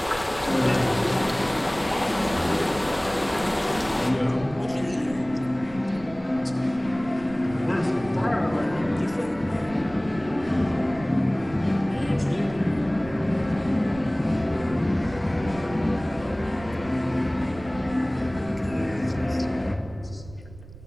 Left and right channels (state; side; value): noise; right; rumble, 17 dB below the sound